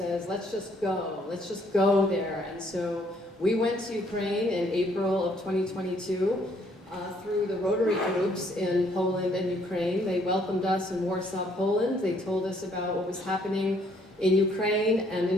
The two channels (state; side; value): normal; both; correlation 0.66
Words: let's just go there. And so we went to Ukraine in April of 2022 through the Rotary groups in Poland and Ukraine. They welcomed us in Warsaw, Poland. They told us about what was happening in Ukraine and